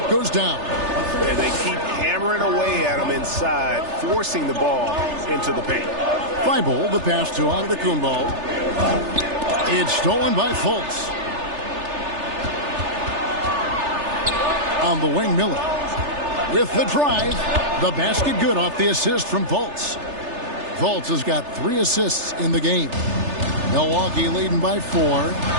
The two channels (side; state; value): left; late; 3.3 ms